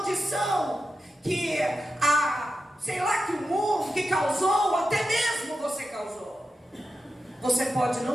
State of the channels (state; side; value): normal; both; correlation 0.91